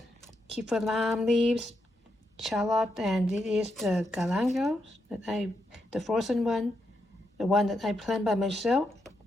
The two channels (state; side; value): normal; both; correlation 0.82